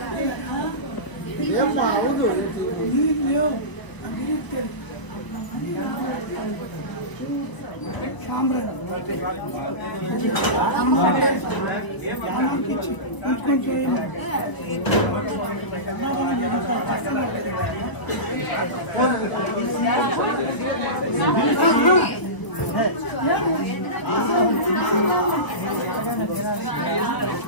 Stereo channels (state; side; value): late; right; 1.3 ms